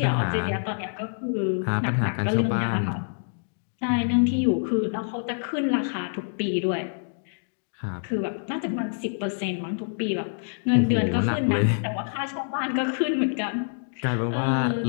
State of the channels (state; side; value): silent; right; digital silence